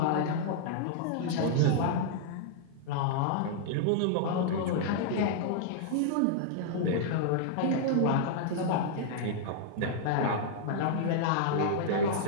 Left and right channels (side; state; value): both; different; correlation -0.01